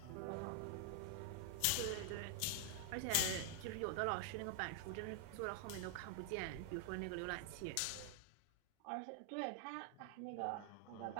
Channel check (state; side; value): different; both; correlation 0.00